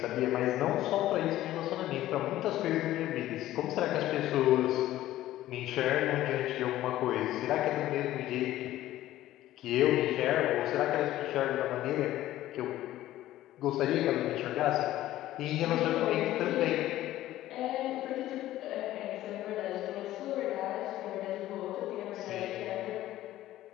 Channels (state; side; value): quieter; right; 14.5 dB